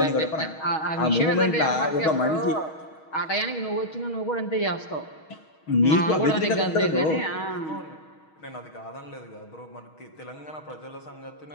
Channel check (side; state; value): right; late; 6.3 ms